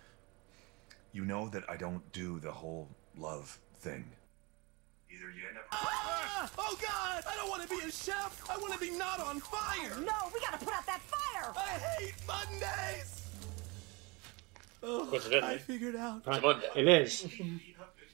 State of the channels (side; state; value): left; quieter; 27.0 dB